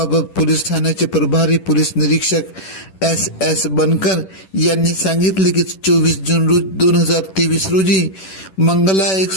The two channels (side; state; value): right; late; 10 ms